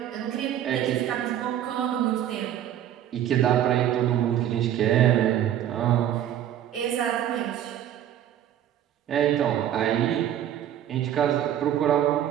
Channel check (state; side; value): quieter; left; 11.0 dB